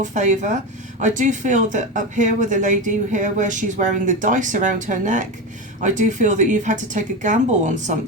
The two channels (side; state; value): both; normal; correlation 0.19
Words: favour. I do feel that up here with the lady here where she's wearing the dice around her neck, I do feel that you've had to take a gamble on